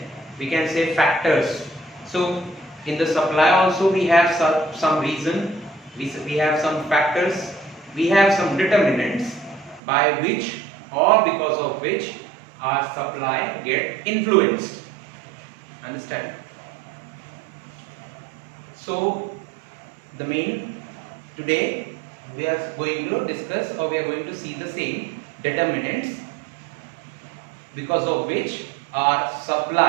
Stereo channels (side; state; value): left; drops out; at 9.8 s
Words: we can say factors. So in the supply also we have some reason, we have some factors, we have some determinants by which or because of which our supply get influenced. Understand? So the main today we are going to discuss, or we are going to see the same determinants because of which our